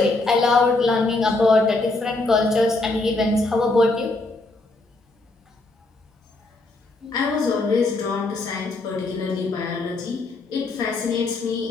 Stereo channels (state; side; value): quieter; right; 3.1 dB